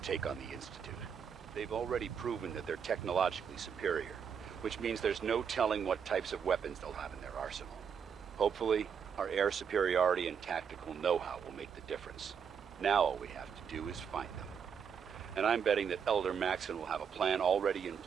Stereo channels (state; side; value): quieter; left; 7.1 dB